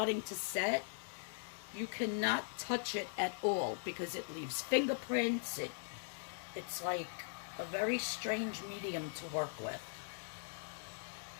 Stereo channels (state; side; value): silent; right; digital silence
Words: to set, you cannot touch it at all because it leaves fingerprints. It's like a very strange medium to work with.